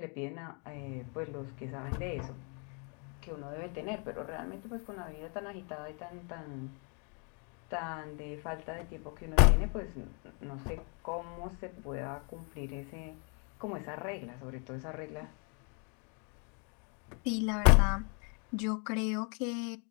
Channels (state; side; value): quieter; right; 37.2 dB